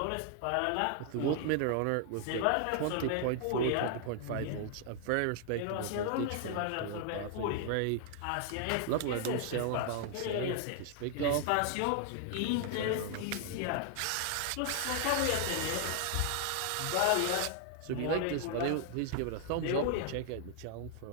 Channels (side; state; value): both; different; correlation 0.00